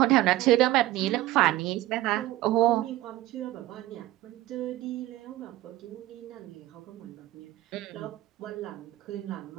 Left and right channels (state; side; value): quieter; left; 16.4 dB